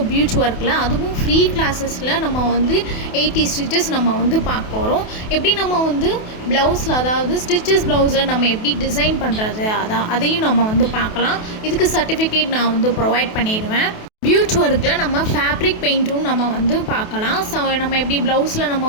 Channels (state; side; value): late; right; 28 ms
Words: பியூச் ஒர்க்கில் அதுவும் ஃப்ரீ கிளாஸஸில் நம்ம வந்து 80 ஸ்டிச்சஸ் நம்ம வந்து பார்க்க போகிறோம். எப்படி நம்ம வந்து ப்ளவுஸில், அதாவது ஸ்டிச்சஸ் ப்ளவுஸில் நம்ம எப்படி டிசைன் பண்ணுறது அதையும் நம்ம வந்து பார்க்கலாம். இதுக்கு சர்டிஃபிகேட் நான் வந்து ப்ரொவைட் பண்ணிடுவேன். பியூச் ஒர்க்கில் நம்ம ஃபேப்ரிக் பெயிண்ட்டும் நம்ம வந்து பார்க்கலாம். ஸோ நம்ம எப்படி ப்ளவுஸில் நம்ம